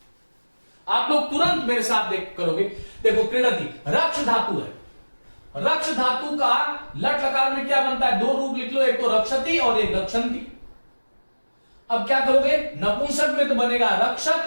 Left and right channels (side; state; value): both; inverted; correlation -1.00